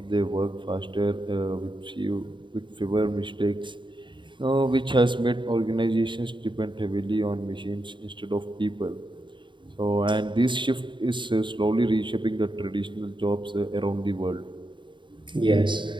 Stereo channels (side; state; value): left; late; 0.23 ms